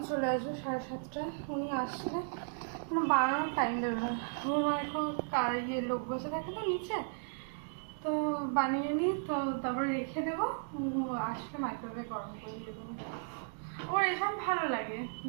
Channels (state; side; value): silent; left; digital silence